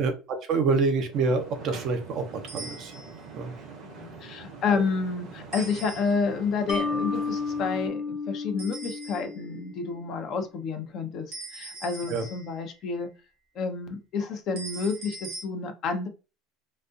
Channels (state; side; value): normal; both; correlation 0.48